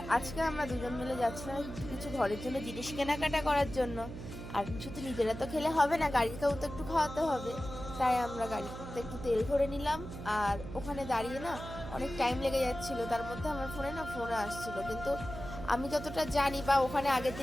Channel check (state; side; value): noise; right; hum, 10 dB below the sound